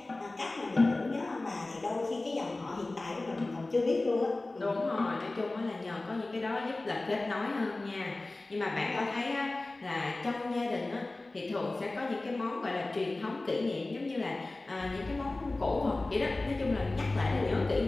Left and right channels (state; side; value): quieter; right; 3.0 dB